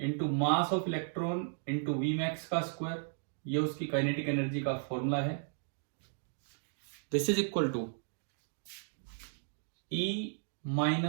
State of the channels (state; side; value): silent; left; digital silence